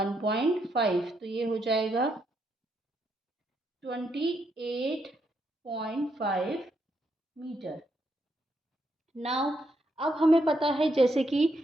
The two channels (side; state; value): both; normal; correlation 0.78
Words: तो ये हो जाएगा 28.5 मीटर। नाउ अब हमें पता है जैसे कि